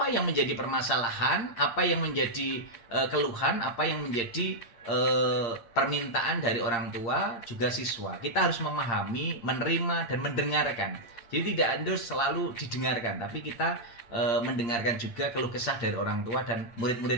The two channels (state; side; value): late; right; 8.7 ms